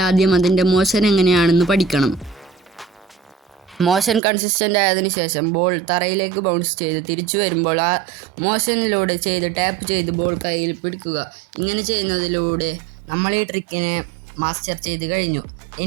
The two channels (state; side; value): drops out; left; at 4.2 s